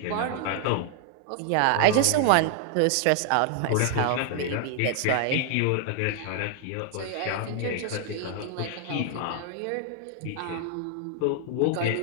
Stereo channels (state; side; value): different; both; correlation 0.00